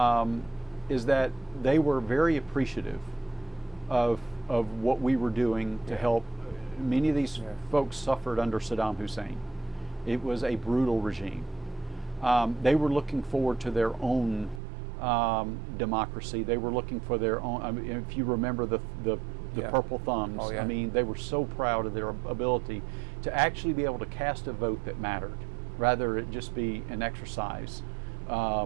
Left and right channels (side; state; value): left; drops out; at 14.6 s